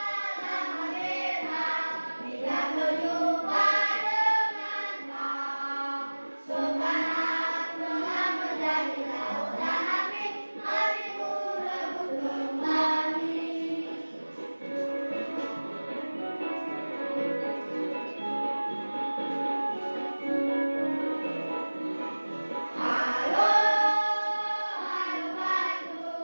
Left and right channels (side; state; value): both; inverted; correlation -1.00